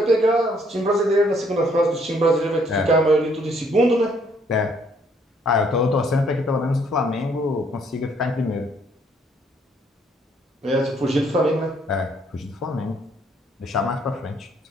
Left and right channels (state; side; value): normal; both; correlation 0.66